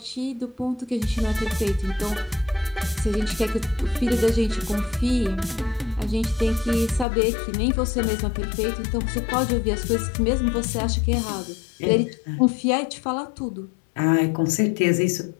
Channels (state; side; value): drops out; right; at 7.1 s